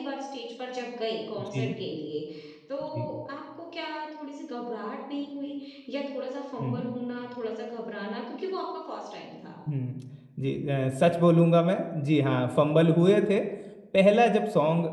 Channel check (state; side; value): identical; both; correlation 1.00